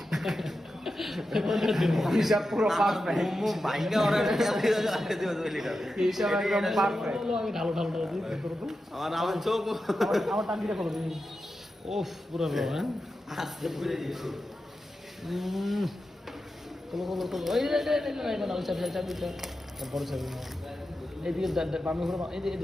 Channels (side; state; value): both; normal; correlation 0.90